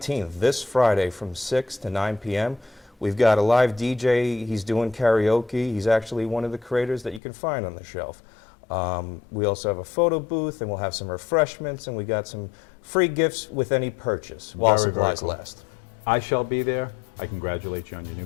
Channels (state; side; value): drops out; right; at 7.2 s